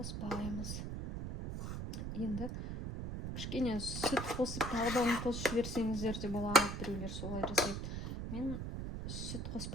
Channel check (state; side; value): noise; right; rumble, 4 dB below the sound